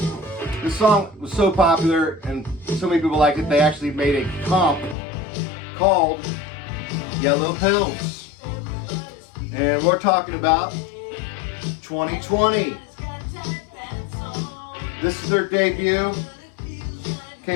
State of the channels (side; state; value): right; drops out; at 5.0 s